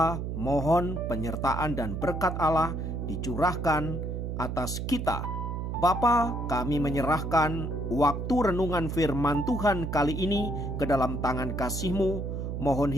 mohon penyertaan dan berkat Allah dicurahkan atas kita. Bapa, kami menyerahkan waktu renungan firman Tuhan kali ini ke dalam tangan kasih-Mu. Mohon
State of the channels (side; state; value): right; noise; hum, 4 dB below the sound